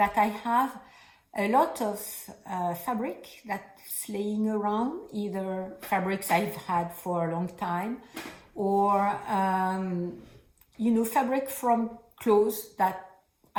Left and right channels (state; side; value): identical; both; correlation 1.00